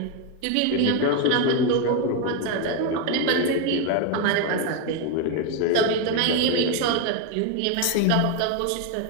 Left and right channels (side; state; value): both; different; correlation 0.01